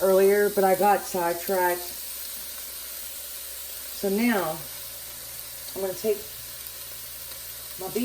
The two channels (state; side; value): identical; both; correlation 1.00